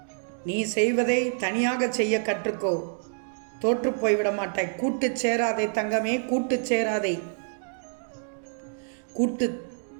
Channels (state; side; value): silent; left; digital silence